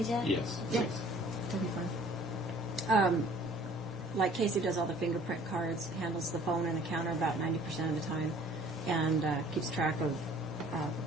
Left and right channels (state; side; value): normal; both; correlation 0.53